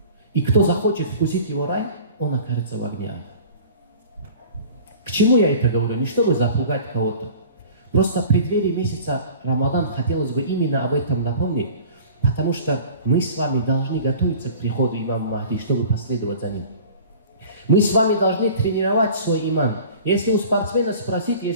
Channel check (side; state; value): both; inverted; correlation -0.43